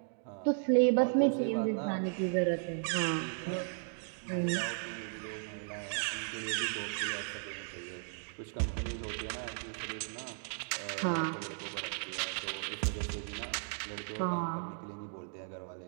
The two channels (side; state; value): left; silent; 54 dB below the other